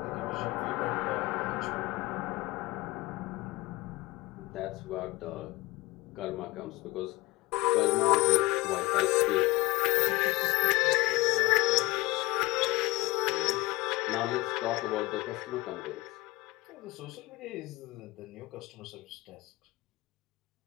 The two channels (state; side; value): quieter; right; 21.4 dB